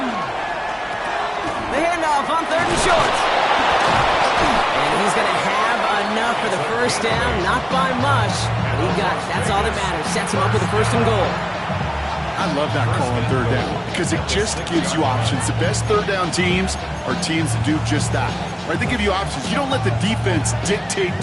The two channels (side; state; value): both; identical; correlation 1.00